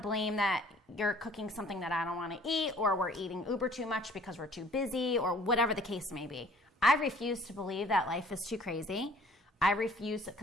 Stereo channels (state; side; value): normal; both; correlation 0.54